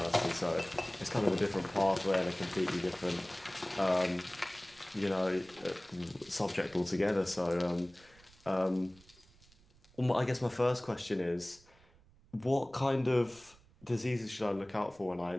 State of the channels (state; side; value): noise; right; rumble, 27 dB below the sound